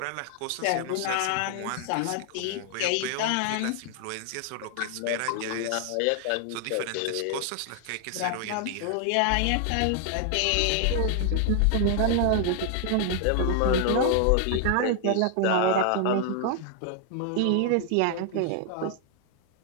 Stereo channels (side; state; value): both; different; correlation 0.00